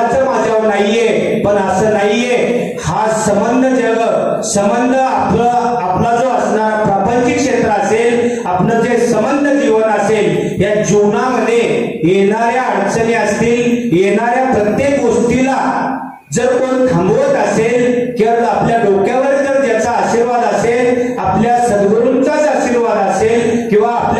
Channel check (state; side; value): identical; both; correlation 1.00